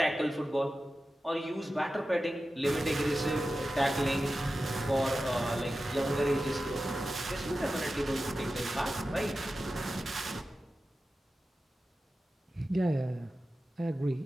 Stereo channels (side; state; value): both; normal; correlation 0.93